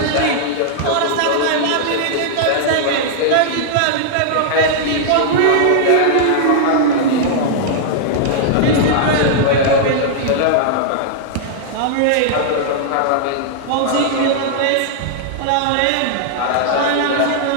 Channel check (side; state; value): both; different; correlation -0.01